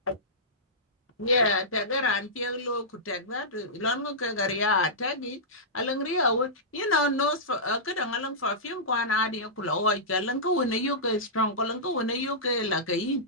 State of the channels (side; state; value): both; normal; correlation -0.16